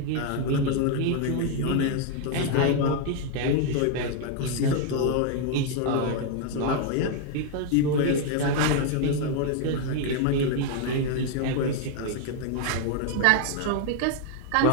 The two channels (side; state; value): both; different; correlation 0.00